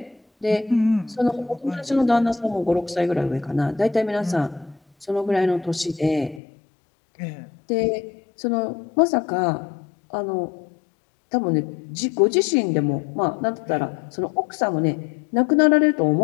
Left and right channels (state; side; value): drops out; right; at 6.4 s